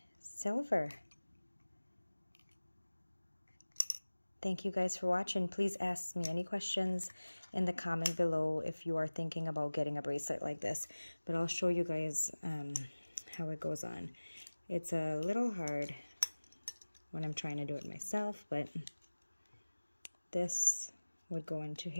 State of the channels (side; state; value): both; inverted; correlation -1.00